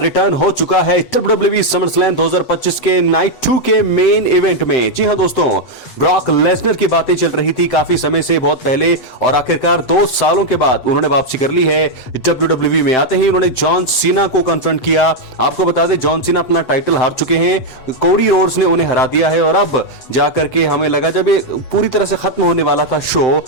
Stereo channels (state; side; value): late; right; 8.2 ms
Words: हो चुका है WWE समरस्लैम 2025 के नाइट 2 के मेन इवेंट में। जी हां दोस्तों, ब्रॉक लेसनर की बातें चल रही थी काफी समय से, बहुत पहले, और आखिरकार 2 सालों के बाद उन्होंने वापसी कर ली है WWE में। आते ही उन्होंने जॉन सीना को कन्फ्रंट किया। आपको बता दें, जॉन सीना अपना टाइटल हार चुके हैं, कोडी रोड्स ने उन्हें हरा दिया है। और अब जाकर के हमें लगा जब ये पूरी तरह से खत्म होने वाला था शो,